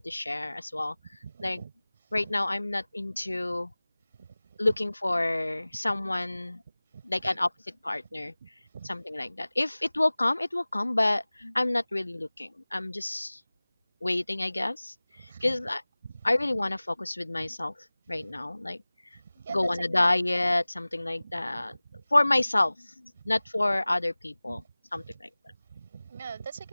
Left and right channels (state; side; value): inverted; both; correlation -1.00